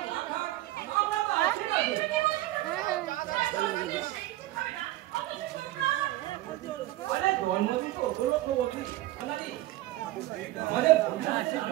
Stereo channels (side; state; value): left; quieter; 16.5 dB